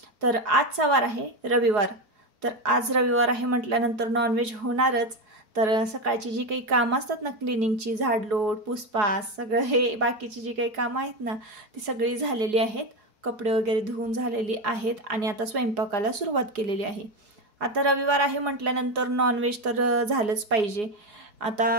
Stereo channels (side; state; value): left; late; 4.8 ms